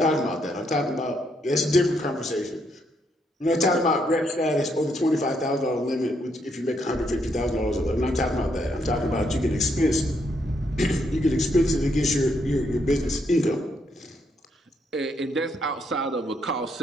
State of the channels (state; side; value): normal; both; correlation 0.75